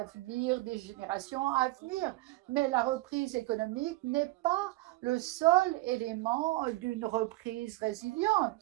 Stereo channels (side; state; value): left; quieter; 20.3 dB